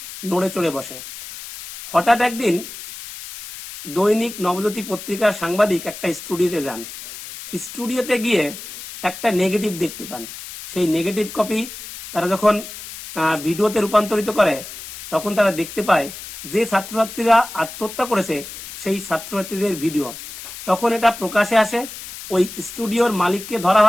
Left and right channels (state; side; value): noise; left; hiss, 12 dB below the sound